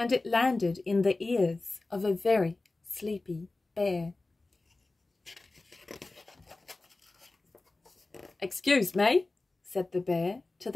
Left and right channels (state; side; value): quieter; right; 3.2 dB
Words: it landed in the ears of a very sleepy bear. "Excuse me," said the bear to